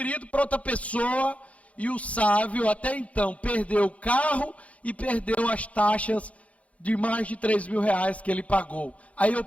para outra pessoa, e o Sávio até então perdeu o carro e perdeu as taxas de mais de R$3.000 que ele pagou. Aí eu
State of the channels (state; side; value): late; right; 0.065 ms